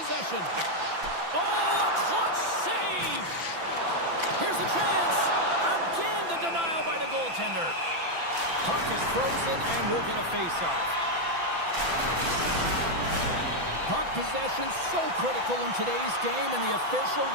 Oh, a clutch save! Here's a chance. Again, the denial by the goaltender. Puck is frozen, and we'll get a faceoff. Puck possession so critical in today's game, and the official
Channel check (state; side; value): late; left; 6.0 ms